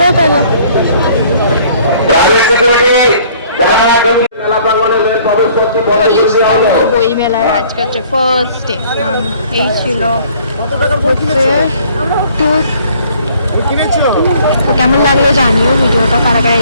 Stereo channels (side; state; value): both; inverted; correlation -0.57